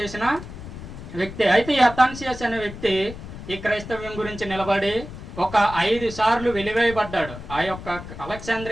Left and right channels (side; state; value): left; noise; rumble, 12 dB below the sound